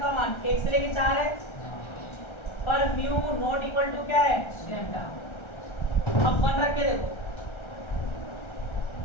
मान 1 से लेके 4 है पर म्यू नॉट इक्वल टू क्या है लैम्डा अब 1 रख के देखो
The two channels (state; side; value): late; right; 1.3 ms